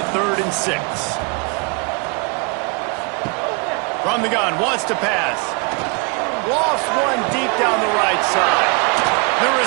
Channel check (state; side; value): quieter; left; 33.0 dB